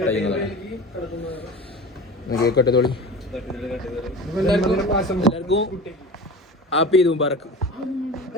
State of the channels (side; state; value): both; normal; correlation 0.34